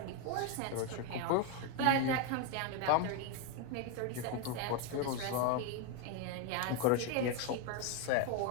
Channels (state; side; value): different; both; correlation 0.01